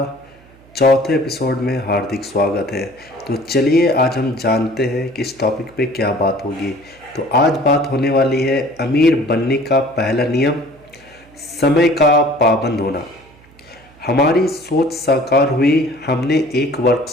चौथे एपिसोड में हार्दिक स्वागत है। तो चलिए आज हम जानते हैं कि इस टॉपिक पे क्या बात होगी। तो आज बात होने वाली है अमीर बनने का पहला नियम, समय का पाबंद होना। हमारी सोच साकार हुई। हमने एक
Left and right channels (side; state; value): right; noise; hum, 27 dB below the sound